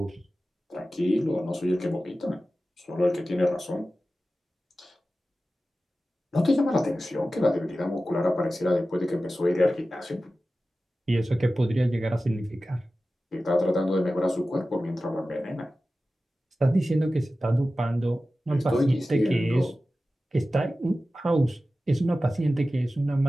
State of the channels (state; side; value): normal; both; correlation 0.95